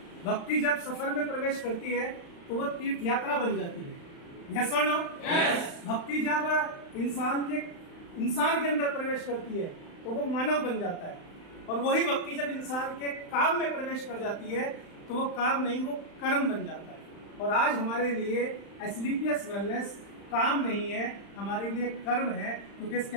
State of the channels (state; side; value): late; right; 35 ms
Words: भक्ति जब सफर में प्रवेश करती है तो वह तीर्थ यात्रा बन जाती है। यस और नो? यस। भक्ति जब इंसान के अंदर प्रवेश करती है तो वो मानव बन जाता है, और वही भक्ति जब इंसान के काम में प्रवेश कर जाती है तो वो काम नहीं, वो कर्म बन जाता है। और आज हमारे लिए एसलीपीएस वेलनेस काम नहीं है, हमारे लिए कर्म है, क्योंकि इसके